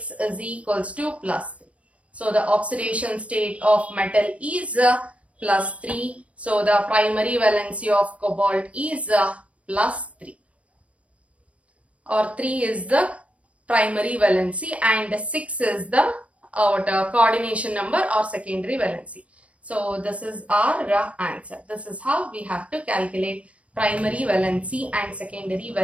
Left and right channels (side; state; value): left; late; 0.064 ms